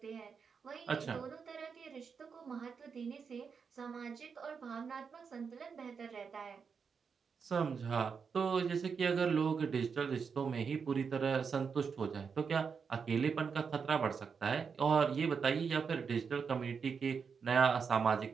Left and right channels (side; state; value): left; quieter; 5.9 dB